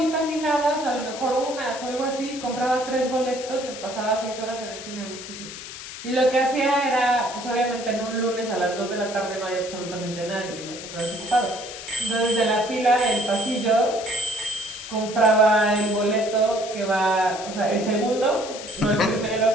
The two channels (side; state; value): left; noise; hiss, 11 dB below the sound